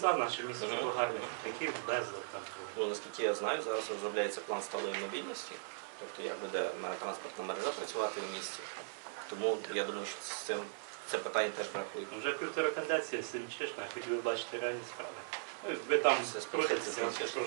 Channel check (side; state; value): left; silent; digital silence